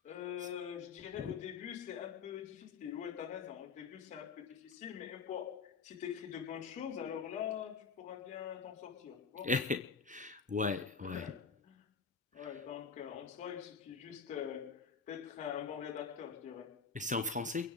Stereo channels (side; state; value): right; quieter; 5.3 dB